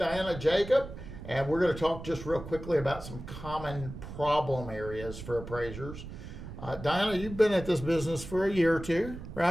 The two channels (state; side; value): noise; right; rumble, 11 dB below the sound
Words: Jacob, and we're going to talk just real quickly about some common problem areas for appraisers. Diana, you've been at this business for a year or two,